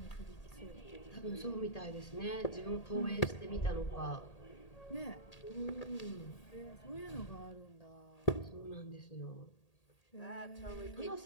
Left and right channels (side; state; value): right; late; 1.8 ms